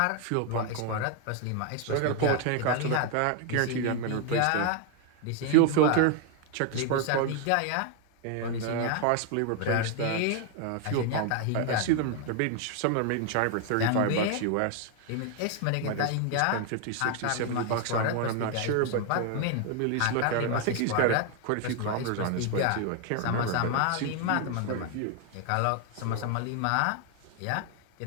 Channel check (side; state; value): both; different; correlation 0.01